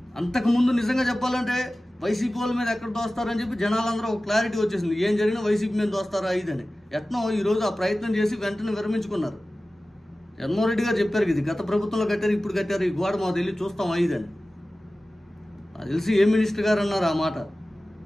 అంతకుముందు నిజంగా చెప్పాలంటే వైసీపీ వాళ్ళ మీద ఎక్కడ దోస్తారని చెప్పి జనాలందరూ ఒక క్లారిటీ వచ్చేసింది, ఏం జరిగినా వైసీపీ మీద దోస్తారా ఇదని. ఎట్నో ఈరోజు ఆ ప్రయత్నం చేసి వెంటనే విరమించుకున్నారు. జగన్మోహన్ రెడ్డి గారు చెప్పారు, ఇది గత ప్రభుత్వంలో కట్టారు, ఇప్పుడు కట్టారు, ఈ గోడ మాకు వెళ్ళి చూస్తాం ఐదని. నాకు తెలిసి ఏ మినిస్టర్ గారు అన్నారు ఆ మాట.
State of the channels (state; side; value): normal; both; correlation 0.96